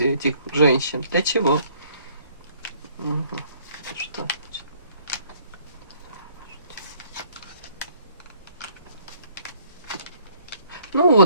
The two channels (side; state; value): both; inverted; correlation -0.61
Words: этих женщин? Для чего? Что? Ну